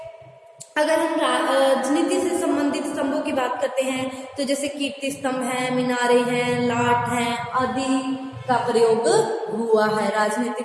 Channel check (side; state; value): both; identical; correlation 1.00